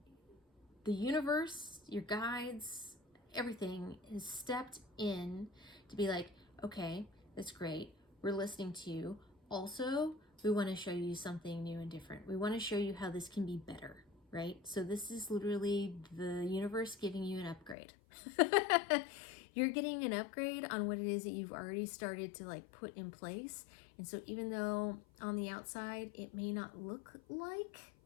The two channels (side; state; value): right; drops out; at 17.8 s